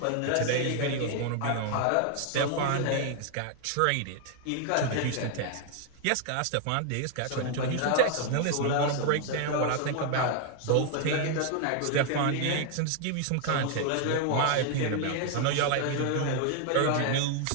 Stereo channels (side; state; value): both; different; correlation 0.00